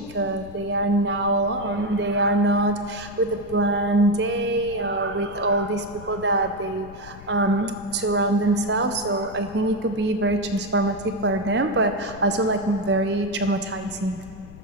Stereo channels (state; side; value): noise; left; rumble, 17 dB below the sound